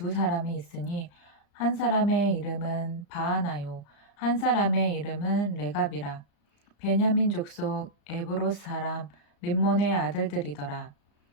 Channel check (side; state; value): right; late; 35 ms